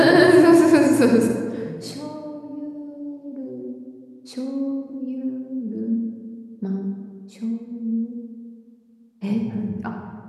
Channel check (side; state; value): both; identical; correlation 1.00